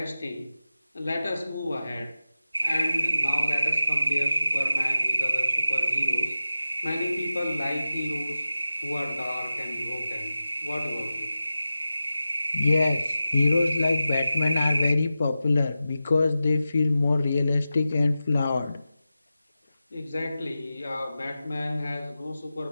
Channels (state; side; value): inverted; both; correlation -0.94